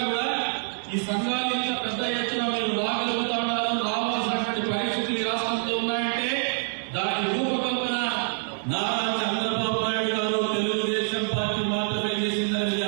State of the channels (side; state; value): left; silent; 61 dB below the other